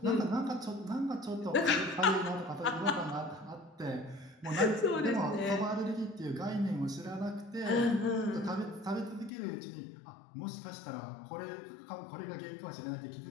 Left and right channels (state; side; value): drops out; right; at 9.3 s